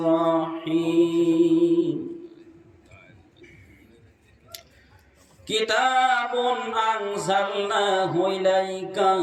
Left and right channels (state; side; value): identical; both; correlation 1.00